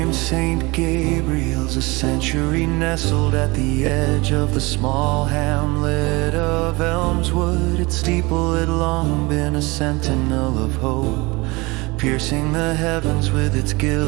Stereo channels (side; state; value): left; quieter; 24.4 dB